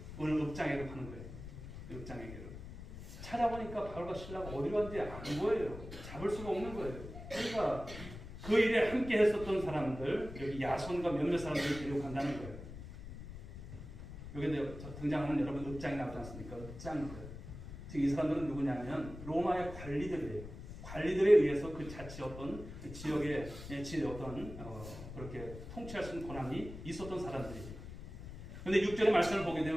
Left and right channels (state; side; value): noise; left; rumble, 12 dB below the sound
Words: 오늘 읍장에로 가는 거예요. 읍장에게로. 찾아보니까 바울과 실라가 어디로 갔는지 안 보여요. 잡을 수가 없는 거예요. 그러니까 그 일에 함께 했었던 사람들, 여기 야손과 몇몇 사람들을 데리고 간다는 거예요. 여기 등장하는 여러분 읍장이 나오지 않습니까? 읍장들. 즉 이 사람들은 누구냐면 로마의 관리들이에요. 관리들에 의해서 그 자치 어떤 지역의 어떤 그렇게 통치할 수 있는 권한이 있었던 사람들이에요. 그런데 6절의 말씀을 보게